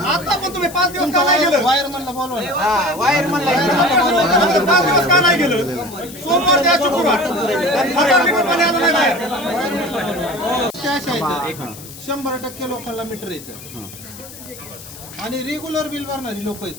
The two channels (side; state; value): left; noise; hiss, 16 dB below the sound